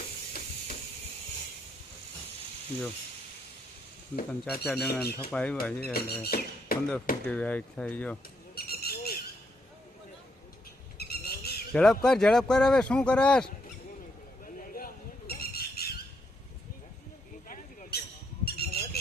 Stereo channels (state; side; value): normal; both; correlation 0.76